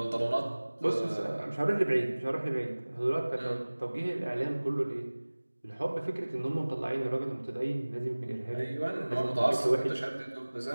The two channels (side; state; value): both; inverted; correlation -1.00